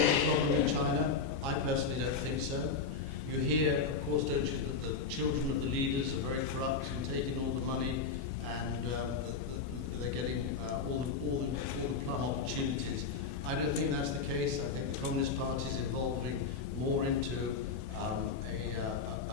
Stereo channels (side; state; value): right; quieter; 5.1 dB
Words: problem in China? I personally don't think so. You hear, of course, don't you, that the children of the leaders are very corrupt and taking all the money, and they're getting all the plum opportunities. I don't think that's the case. I think the Communist Party is evolving more into a